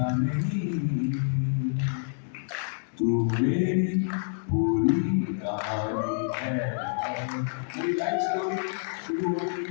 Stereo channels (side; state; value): right; silent; digital silence